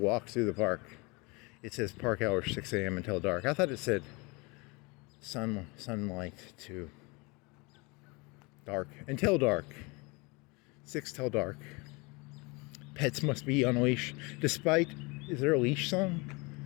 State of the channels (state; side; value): quieter; right; 27.5 dB